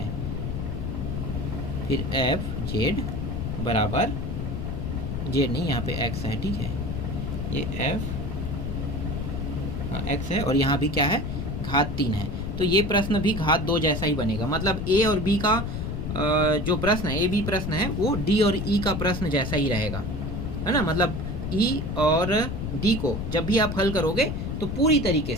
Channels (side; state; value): left; noise; rumble, 3 dB below the sound